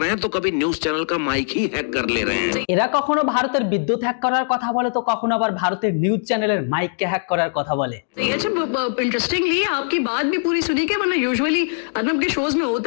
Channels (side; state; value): right; silent; digital silence